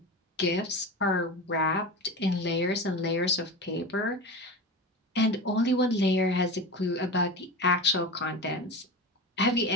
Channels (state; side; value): normal; both; correlation 0.27